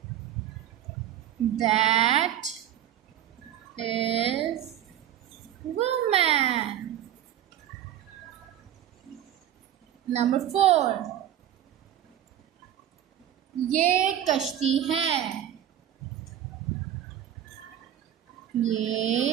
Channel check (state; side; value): quieter; left; 11.1 dB